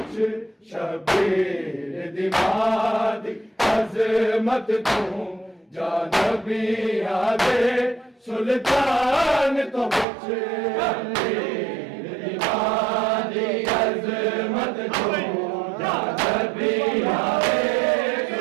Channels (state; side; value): drops out; left; at 10.1 s